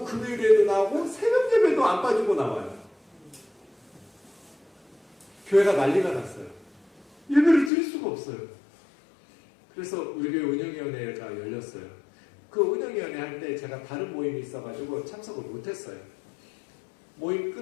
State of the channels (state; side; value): drops out; right; at 7.7 s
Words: 금요일에도 나오고 새벽 예배도 안 빠지고 나와요. 교회가 난리가 났어요. 예배를 드릴 수가 없어요. 그래서 우리 교회 운영위원회가 열렸어요. 그 운영위원회 할 때 제가 다른 모임이 있어가지고 참석을 못했어요. 모임